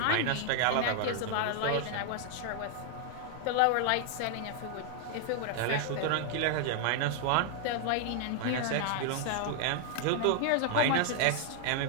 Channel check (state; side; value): different; both; correlation 0.00